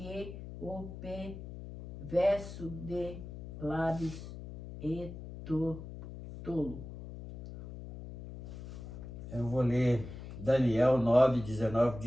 o perverso de lábios e tolo. Eu vou ler Daniel 9, 19,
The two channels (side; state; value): left; noise; hum, 11 dB below the sound